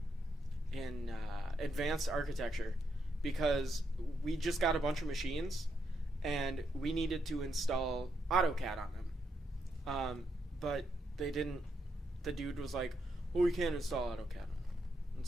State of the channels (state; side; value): normal; both; correlation 0.79